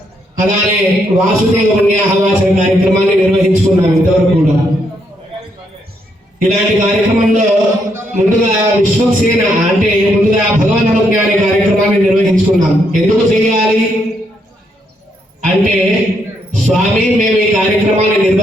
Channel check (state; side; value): normal; both; correlation 0.76